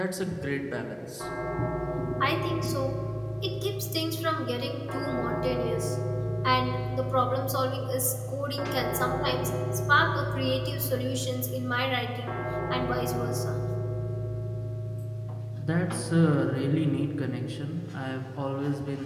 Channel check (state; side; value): identical; both; correlation 1.00